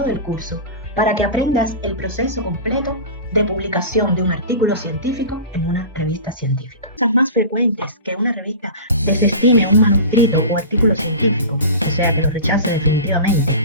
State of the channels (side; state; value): both; inverted; correlation -0.32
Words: el curso para que aprendas el proceso completo de publicación de un artículo científico en una revista científica. Cosas más frecuentes que una revista desestime un manuscrito o artículo científico, o sea, que lo rechace